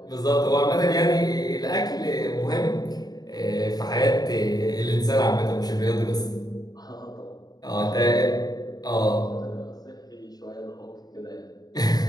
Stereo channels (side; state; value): right; late; 0.19 ms